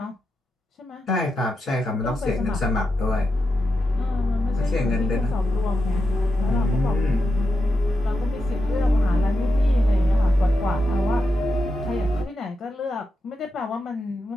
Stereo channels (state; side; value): normal; both; correlation 0.87